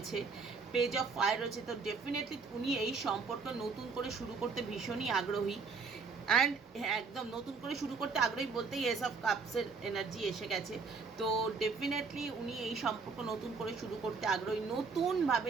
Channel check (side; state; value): left; quieter; 4.8 dB